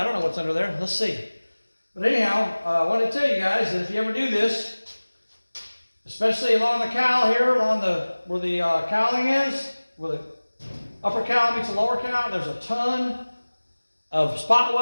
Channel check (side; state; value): both; inverted; correlation -1.00